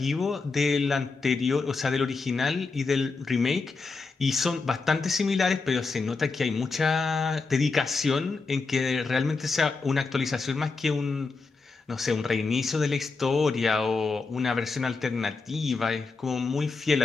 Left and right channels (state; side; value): quieter; right; 4.2 dB